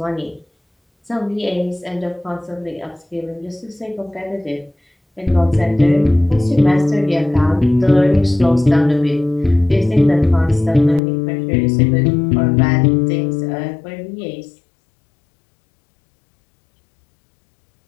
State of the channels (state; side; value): drops out; right; at 11.0 s